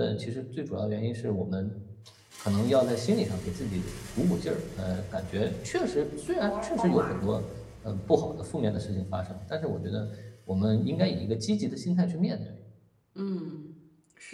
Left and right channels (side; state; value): both; identical; correlation 1.00